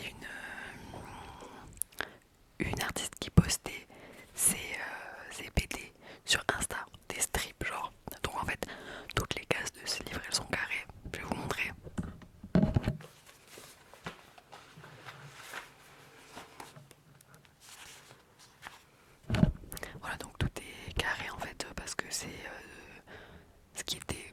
une artiste qui postait ses BD sur Insta, des strips genre. Donc en fait, toutes les cases de ce livre elles sont carrées. Je vais vous montrer. Voilà, donc tout est carré en fait parce que c'est ce qui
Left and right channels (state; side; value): identical; both; correlation 1.00